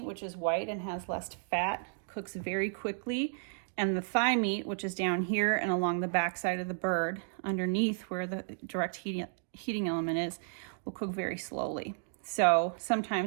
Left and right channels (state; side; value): silent; left; digital silence